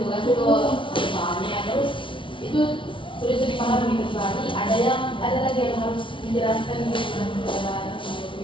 tugas itu soalnya, terus itu sulit dipahami kecuali ada lagi yang harus dijelaskan gitu,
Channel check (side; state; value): right; late; 0.25 ms